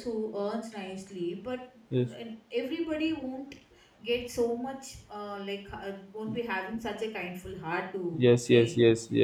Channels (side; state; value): both; identical; correlation 1.00